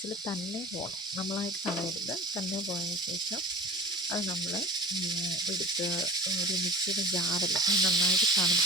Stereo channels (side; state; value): both; normal; correlation 0.38